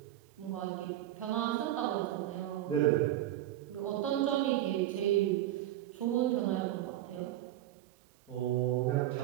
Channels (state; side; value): quieter; left; 13.6 dB